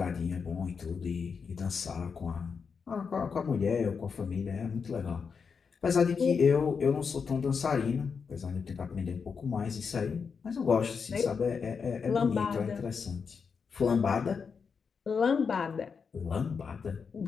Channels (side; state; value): right; quieter; 5.8 dB